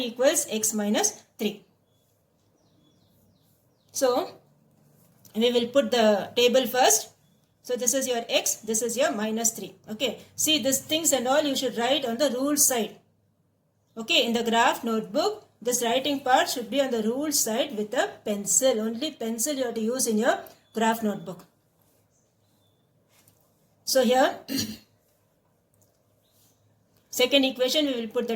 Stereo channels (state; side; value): identical; both; correlation 1.00